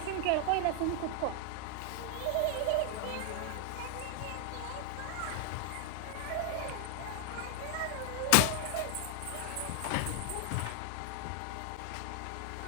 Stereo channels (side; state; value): both; different; correlation 0.00